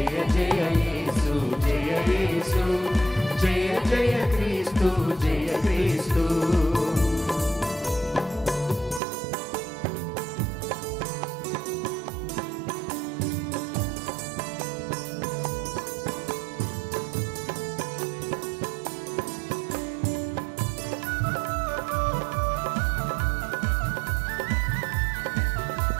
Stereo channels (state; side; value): drops out; left; at 9.0 s